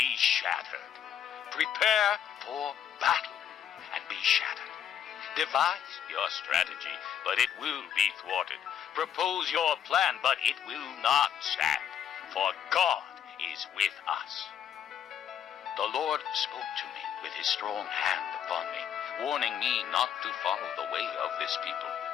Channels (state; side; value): quieter; right; 9.2 dB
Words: shattered. Prepare for battle and be shattered. Devise your strategy, but it will be thwarted. Propose your plan, but it will not stand, for God is with us. The Lord spoke to me with his strong hand upon me, warning me not to follow the way of this people.